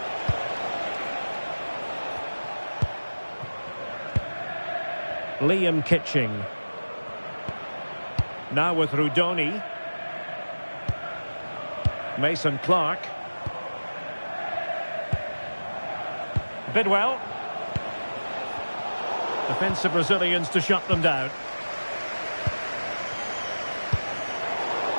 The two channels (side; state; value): both; inverted; correlation -1.00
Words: Liam Kitching. Now with Rudoni. Mason Clark. Bidwell. Defensive Brazilians to shut them down.